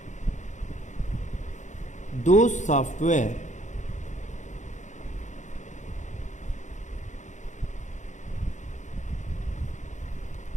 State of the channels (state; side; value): late; right; 0.35 ms